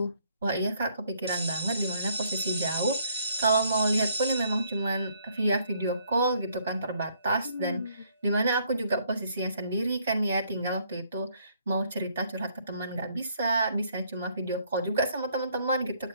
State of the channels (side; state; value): both; inverted; correlation -0.67